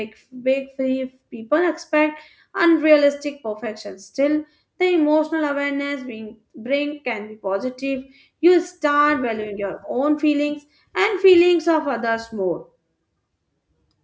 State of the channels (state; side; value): identical; both; correlation 1.00